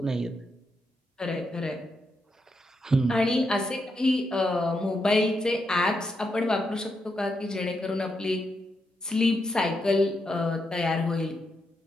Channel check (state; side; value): normal; both; correlation 0.83